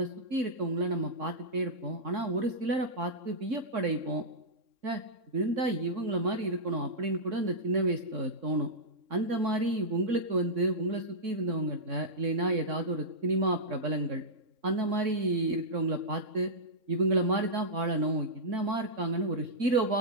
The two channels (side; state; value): left; late; 3.6 ms